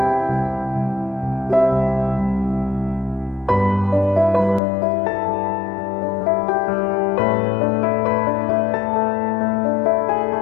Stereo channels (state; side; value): drops out; right; at 4.6 s